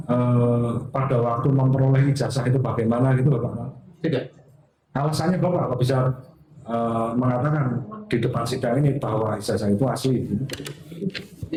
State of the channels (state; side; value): identical; both; correlation 1.00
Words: pada waktu memperoleh ijazah itu bagaimana gitu Bapak? Tidak. Alasannya Bapak apa bisa mengatakan di depan sidang ini bahwa ijazah itu asli?